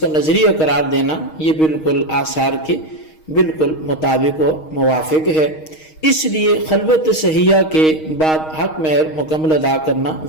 نظریہ قرار دینا یہ بالکل آثار کے بالکل مطابق و موافق ہے، اس لیے خلوت صحیحہ کے بعد حق مہر مکمل ادا کرنا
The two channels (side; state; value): right; late; 6.4 ms